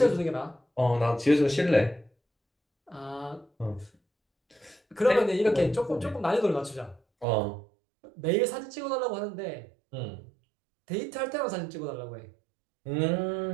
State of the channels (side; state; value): left; drops out; at 7.2 s